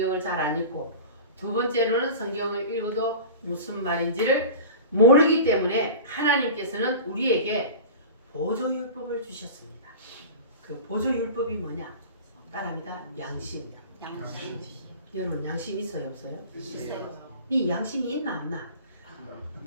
잘 안 읽고, 두 번째로는 성경을 읽어도 무슨 말인지를 모르기 때문에 하나님께서는 우리에게 보조율법을 주셨습니다. 그 보조율법이 뭐냐? 따라합니다. 양심. 양심. 여러분 양심 있어요 없어요? 있어요. 이 양심이 있나 없나?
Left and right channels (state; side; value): inverted; both; correlation -0.34